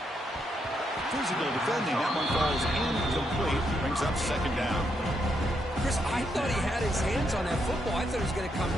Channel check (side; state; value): both; normal; correlation 0.79